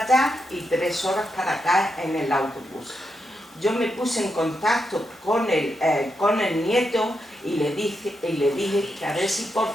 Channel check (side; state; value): both; normal; correlation 0.84